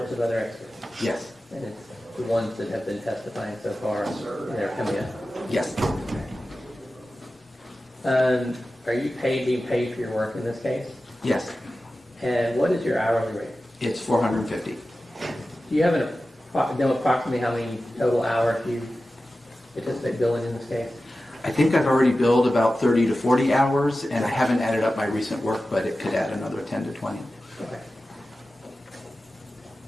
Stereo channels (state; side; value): normal; both; correlation 0.94